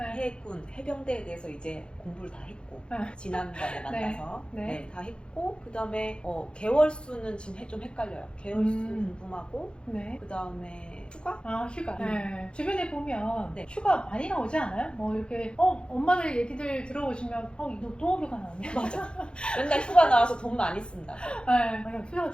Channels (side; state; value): right; late; 0.053 ms